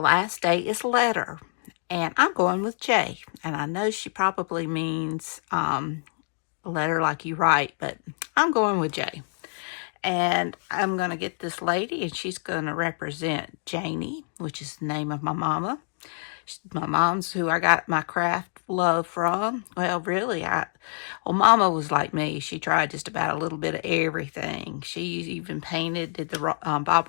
day is letter, and I'm going with J. And I know she probably means letter like you write, but I'm going with J. And I'm going to get this lady, and she's going to represent Janie, which is the name of my mama. My mom's who I got my craft love from. Well, really, Mama was like me. She tried just about a little bit of everything. She even did the Bob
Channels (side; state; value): right; silent; 61 dB below the other